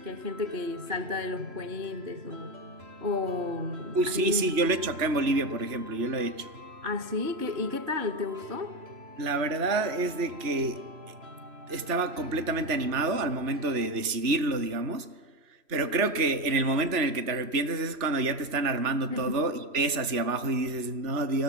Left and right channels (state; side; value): late; left; 3.1 ms